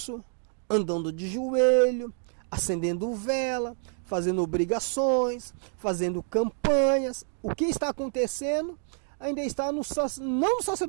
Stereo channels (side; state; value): left; silent; 59 dB below the other